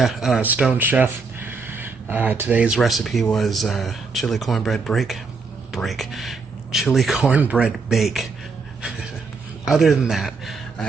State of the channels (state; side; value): quieter; left; 4.5 dB